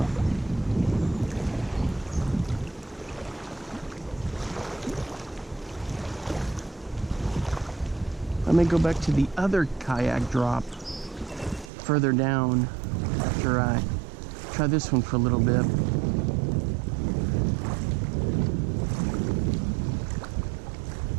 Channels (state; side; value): drops out; left; at 11.7 s